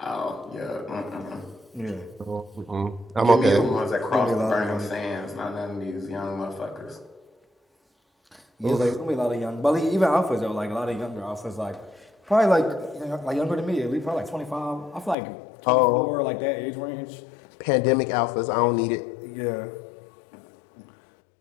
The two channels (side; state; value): right; drops out; at 15.2 s